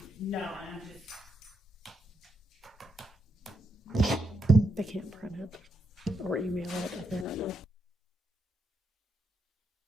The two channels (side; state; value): both; normal; correlation 0.81